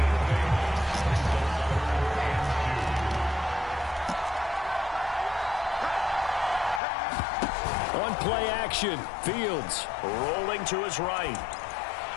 On play action, Fields rolling to his right.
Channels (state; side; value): drops out; right; at 6.8 s